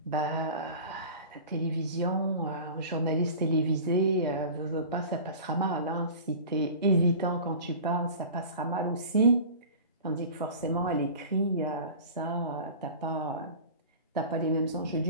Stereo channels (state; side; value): inverted; both; correlation -0.37